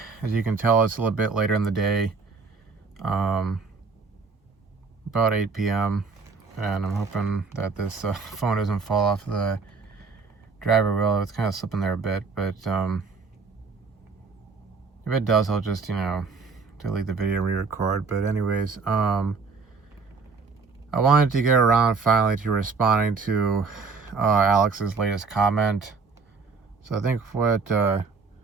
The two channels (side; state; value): left; quieter; 4.8 dB